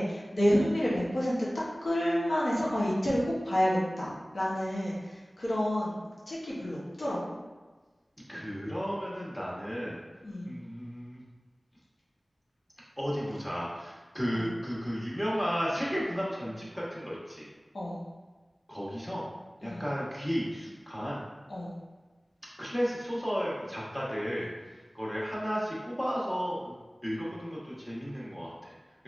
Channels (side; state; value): both; normal; correlation 0.98